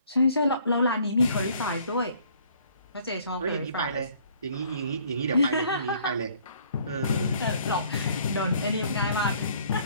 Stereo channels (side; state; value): both; inverted; correlation -0.59